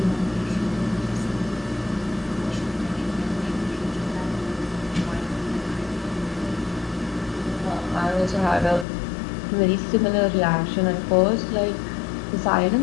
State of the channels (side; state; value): right; drops out; at 8.8 s